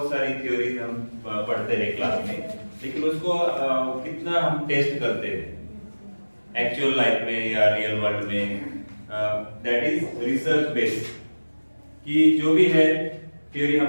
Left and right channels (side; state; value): both; inverted; correlation -1.00